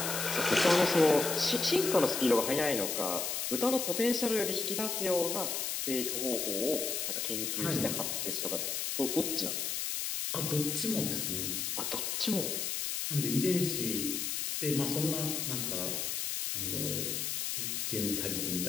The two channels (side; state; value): left; noise; hiss, 1 dB below the sound